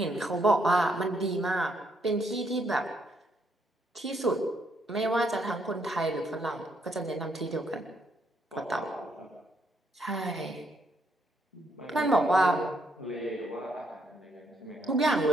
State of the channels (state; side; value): normal; both; correlation 0.73